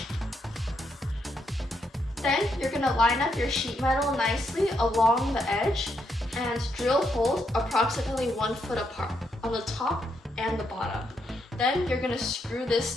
Then you're going to line up your sheet metal nicely along the edge and drill holes approximately 1 foot apart on the top and the bottom. Then you're going to screw this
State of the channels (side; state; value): both; normal; correlation 0.79